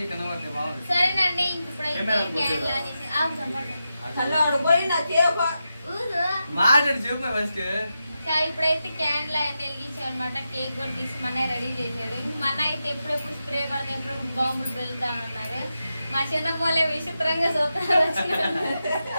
సరేనండి. మాట్లాడి చెప్పు ఫస్ట్. ఇప్పుడైతే క్యాండిల్ అయితే వెలిగించాం అనమాట. కేక్ కూడా తీసి మన రెడీ చేసాడు. మన అయితే ఎప్పుడెప్పుడు స్ప్రే కొడతా, ఎప్పుడెప్పుడు బాంబులు పెరుగుతా ఉన్నారు. మా చిన్న పోలే విచిత్రంగా చూస్తారు.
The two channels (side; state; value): both; inverted; correlation -0.89